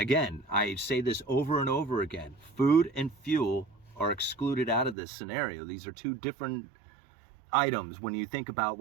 I say this over and over again, food and fuel are excluded out of this scenario. These are two different items when you think about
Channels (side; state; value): left; drops out; at 5.0 s